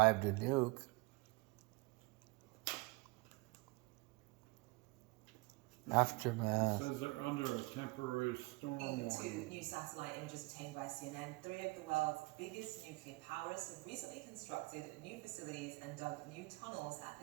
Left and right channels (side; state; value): left; quieter; 24.8 dB